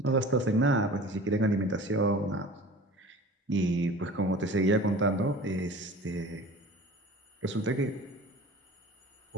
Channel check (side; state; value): both; normal; correlation 0.41